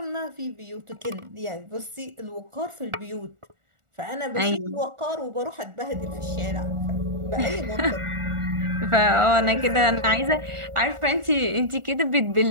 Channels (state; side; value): late; left; 1.4 ms